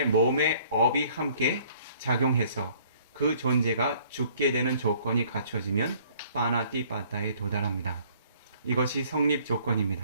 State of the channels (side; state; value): both; inverted; correlation -0.58